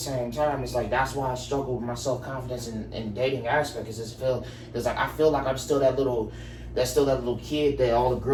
time, it's like, that's why I struggle with my self-confidence in dating aspect, because I feel like I'm still that little kid that all the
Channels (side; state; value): both; identical; correlation 1.00